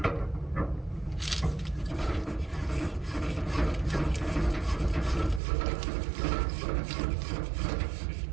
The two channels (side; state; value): left; drops out; at 5.4 s